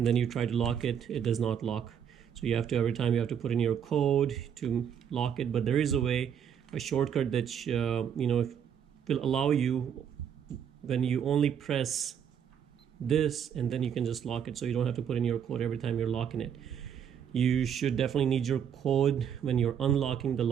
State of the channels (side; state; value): left; quieter; 8.4 dB